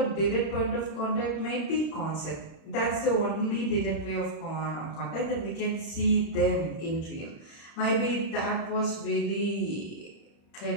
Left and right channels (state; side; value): late; right; 36 ms